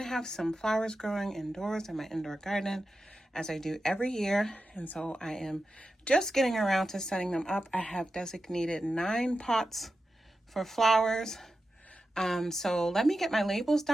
have some flowers growing indoors in my indoor garden as I do every year. And so I am just getting around to setting them up. I have designated 9 pots for flowers. So let me get my labels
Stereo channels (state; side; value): normal; both; correlation 0.91